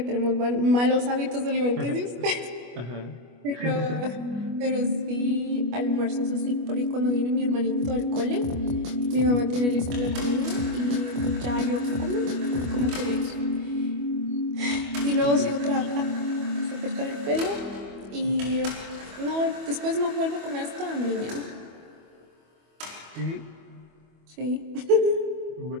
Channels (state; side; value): late; left; 25 ms